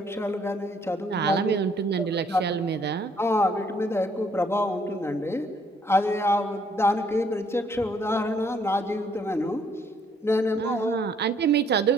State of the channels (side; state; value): both; normal; correlation 0.65